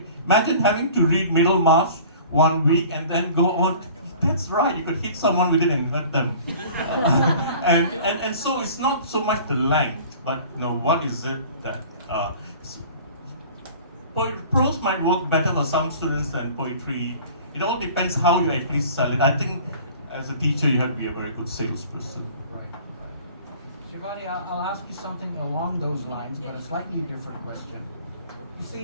imagine having to read Middlemarch 1 week and then go on. That's right, you could hit someone with it and hurt them. and so it's not so much the length, but what is it that prose might work better for some students than poetry. It all depends how you actually sell it. I think as a teacher you have to be a very good salesperson. Right. Shivani, I'll ask you something along those lines, but a slightly different question. You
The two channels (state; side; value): inverted; both; correlation -0.45